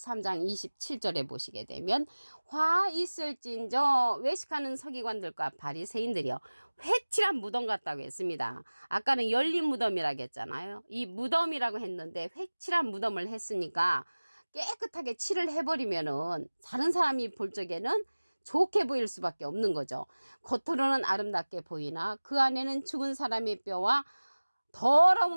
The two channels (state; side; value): inverted; both; correlation -1.00